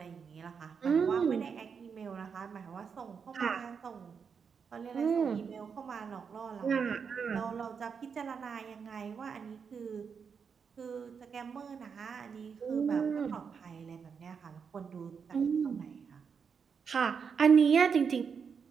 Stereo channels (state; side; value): quieter; left; 6.3 dB